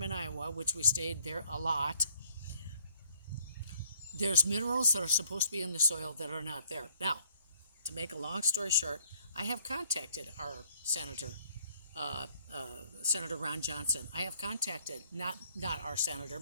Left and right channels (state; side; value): inverted; both; correlation -0.63